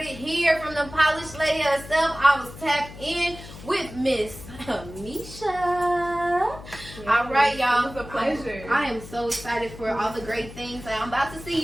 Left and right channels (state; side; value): noise; left; hum, 15 dB below the sound